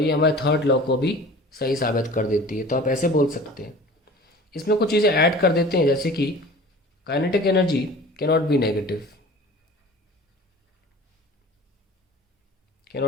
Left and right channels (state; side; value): normal; both; correlation 0.42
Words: ये हमारे थर्ड लॉ को भी सही साबित कर देती है। तो आप ऐसे बोल सकते हैं। इसमें कुछ चीज़ें ऐड कर देते हैं जैसे कि kinetic energy cannot be